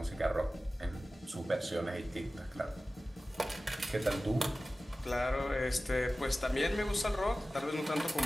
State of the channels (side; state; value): both; normal; correlation 0.96